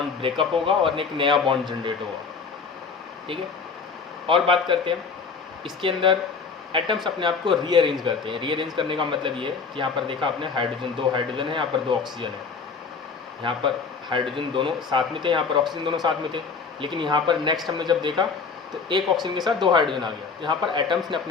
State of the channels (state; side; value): quieter; right; 5.2 dB